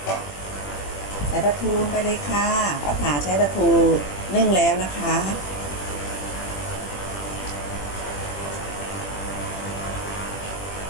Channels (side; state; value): right; late; 21 ms